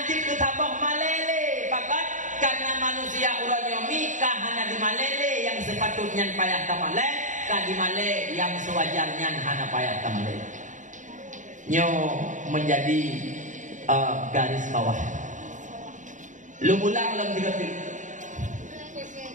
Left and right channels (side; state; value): left; late; 0.36 ms